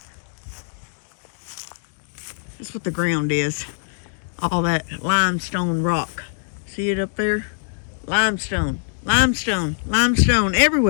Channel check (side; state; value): right; silent; digital silence